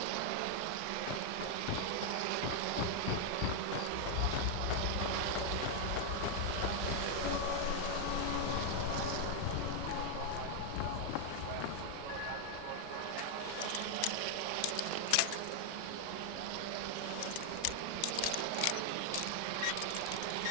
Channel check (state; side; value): different; both; correlation 0.00